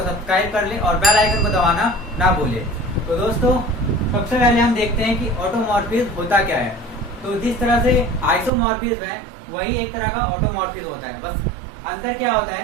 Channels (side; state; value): left; drops out; at 8.5 s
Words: सब्सक्राइब कर लें और बेल आइकन को दबाना ना भूलें। तो दोस्तों, सबसे पहले हम देखते हैं कि ऑटोमॉर्फिज्म होता क्या है। तो जिस तरह से आइसोमॉर्फिज्म है वही एक तरह का ऑटोमॉर्फिज्म होता है। बस अंतर क्या होता